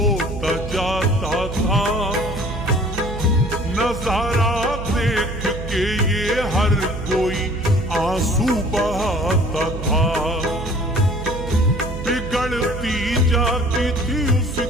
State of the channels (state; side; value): noise; right; hum, 8 dB below the sound